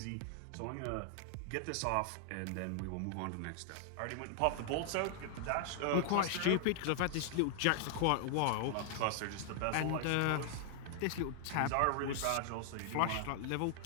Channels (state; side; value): different; both; correlation 0.00